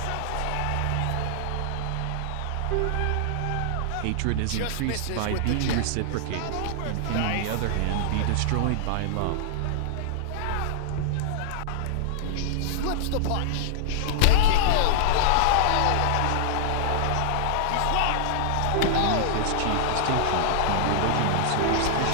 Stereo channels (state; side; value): different; both; correlation -0.01